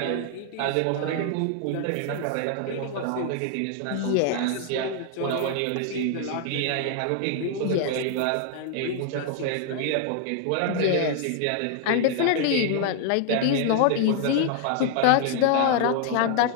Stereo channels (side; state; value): both; different; correlation 0.00